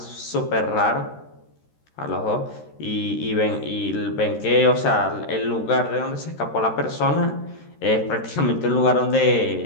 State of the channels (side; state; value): right; late; 13 ms